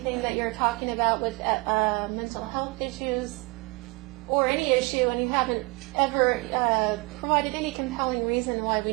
that you're talking about with mental health issues or any issue, and you haven't ever provided any compelling reason why we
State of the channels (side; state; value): left; quieter; 26.7 dB